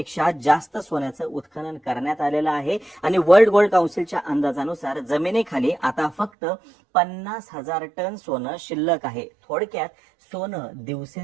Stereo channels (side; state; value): left; drops out; at 6.3 s